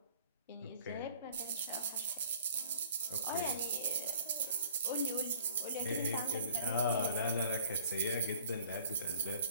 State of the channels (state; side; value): inverted; both; correlation -0.52